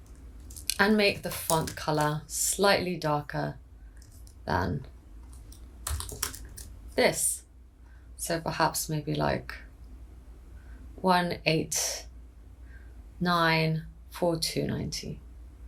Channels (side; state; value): both; identical; correlation 1.00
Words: And make the font color slightly darker than this. So perhaps maybe like 189 4290.